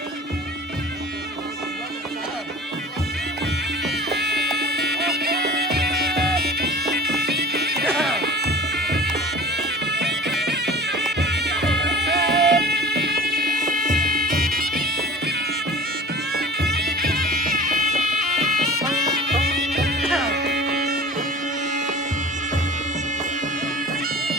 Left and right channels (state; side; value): normal; both; correlation 0.41